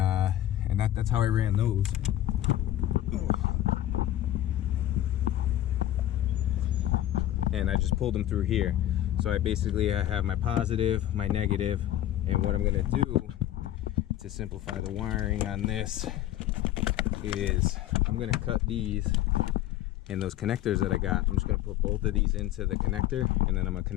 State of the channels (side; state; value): right; quieter; 13.2 dB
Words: how I ran those. And I just pulled them through here. So I have my positive, my negative, and what I'm gonna do to simplify the wiring on this is I'm gonna cut these, and those connectors that I got, I'm just gonna put both of these into the connector, and then I'm gonna